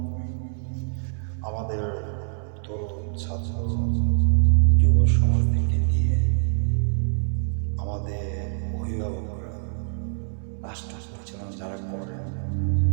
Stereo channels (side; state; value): left; silent; 62 dB below the other